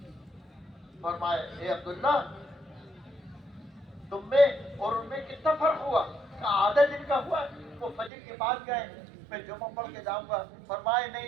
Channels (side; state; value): left; drops out; at 8.1 s